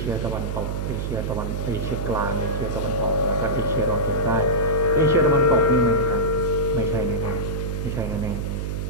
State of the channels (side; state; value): right; noise; hum, 3 dB below the sound